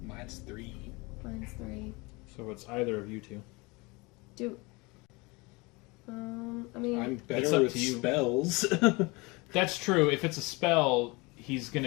Mine's 3. Mine's 3. So it's either of you two. I mean, I'm It's better up with to you. spells. That's true. If it's a spell, he's going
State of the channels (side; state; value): right; quieter; 25.8 dB